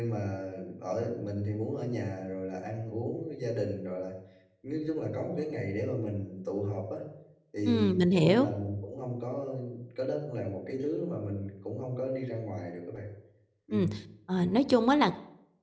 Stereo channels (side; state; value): both; identical; correlation 1.00